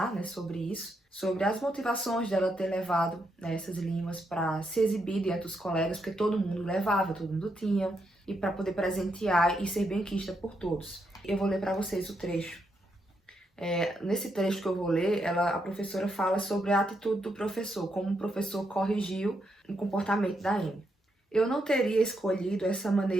né, sobre isso, sobre as motivações dela ter levado, né, essas limas para se exibir diante dos colegas, porque todo mundo levava, todo mundo tinha, e para poder presentear e ser benquista por todos. Eu vou ler para vocês o trecho. Nesse trecho que eu vou ler, a professora fala sobre a atitude do professor, como o professor corrigiu o comportamento da Amy. Eu não teria escolhido essa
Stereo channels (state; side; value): normal; both; correlation 0.80